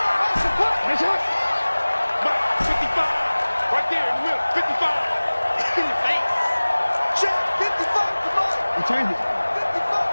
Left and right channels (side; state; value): both; inverted; correlation -1.00